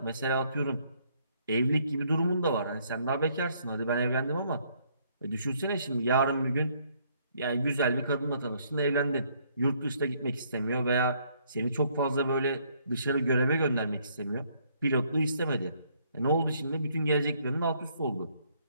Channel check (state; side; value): inverted; both; correlation -0.68